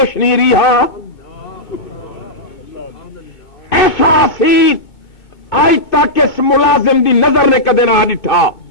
نہیں رہا ایسا حسین آج تک اس ملازم دی نظر نے کدے نہ ڈٹھا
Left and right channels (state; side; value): late; right; 2.6 ms